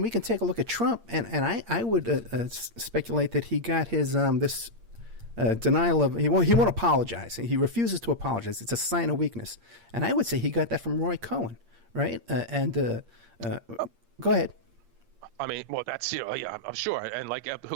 we can take a look at Trump, and I would speculate that he got his this denial of he won't apologize. He refuses to apologize. It's a sign of weakness, and I would say he got that from Roy Cohen, right? Go ahead. I mean, well, that's yeah, I'm sure. And like,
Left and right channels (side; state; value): left; late; 8.7 ms